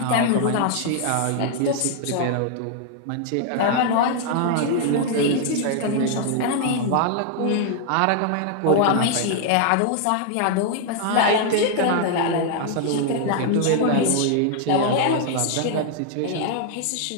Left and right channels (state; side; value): different; both; correlation 0.00